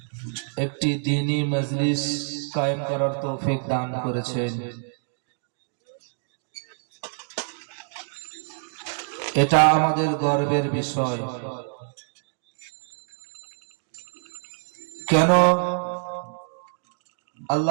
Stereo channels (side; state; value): left; silent; digital silence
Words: একটি দ্বীনী মজলিস কায়েম করার তৌফিক দান করেছেন। এটা আমাদের গর্বের বিষয়। কেন?